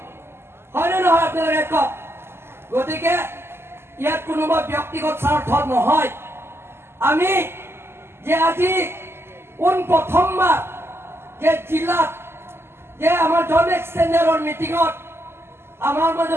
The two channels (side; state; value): left; late; 0.12 ms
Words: হয়নে নহয় আপোনালোকে কওক? গতিকে ইয়াত কোনোবা ব্যক্তিগত স্বাৰ্থ নহয়। আমি যে আজি প্ৰথমবাৰ যে জিলাত যে আমাৰ জন এক্সটেণ্ডাৰৰ মিটিঙত আমাৰ